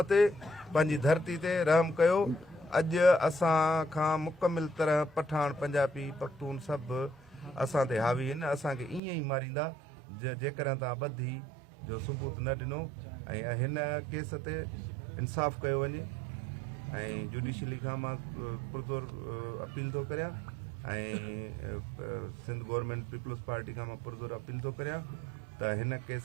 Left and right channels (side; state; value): left; drops out; at 9.0 s